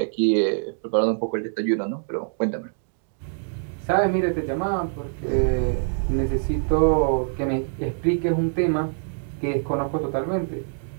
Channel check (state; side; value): silent; left; digital silence